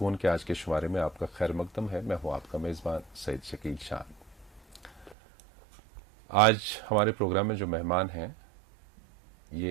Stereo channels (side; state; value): left; drops out; at 5.2 s